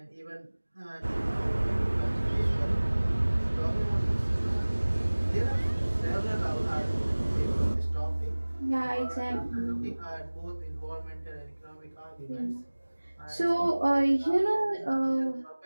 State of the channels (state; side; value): inverted; both; correlation -1.00